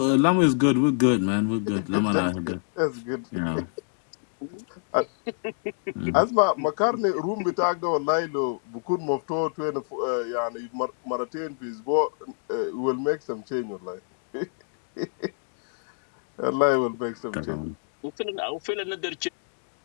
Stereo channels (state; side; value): silent; right; digital silence